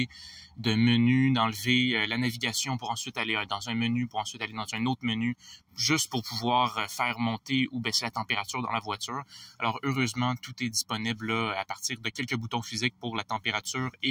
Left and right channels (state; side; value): identical; both; correlation 1.00